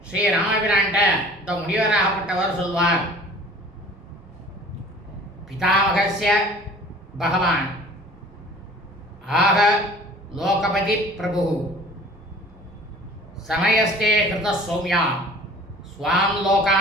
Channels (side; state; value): both; normal; correlation 0.47